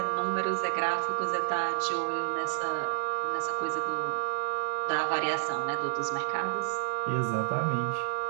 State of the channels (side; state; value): left; silent; digital silence